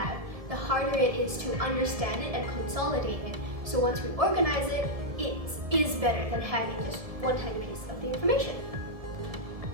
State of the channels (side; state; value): left; late; 1.7 ms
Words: the harder it is to understand it and consolidate it. So once we organize it, it is better than having just one tiny piece of the information.